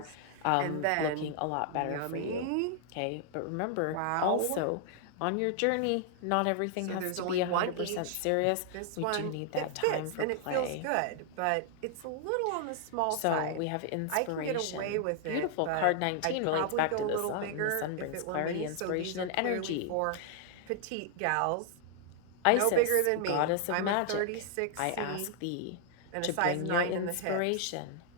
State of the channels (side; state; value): both; different; correlation 0.00